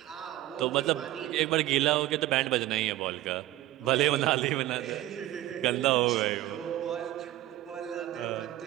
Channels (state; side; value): quieter; left; 15.2 dB